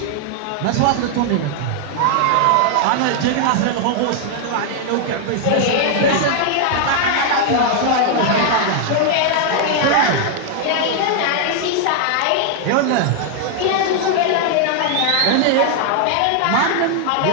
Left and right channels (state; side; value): different; both; correlation 0.00